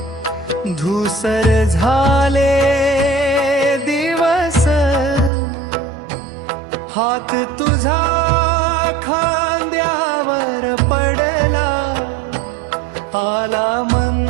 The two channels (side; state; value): left; drops out; at 5.3 s